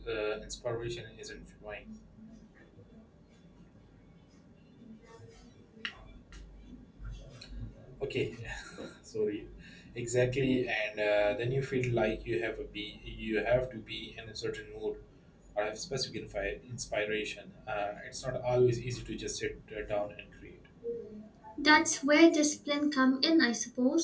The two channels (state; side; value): identical; both; correlation 1.00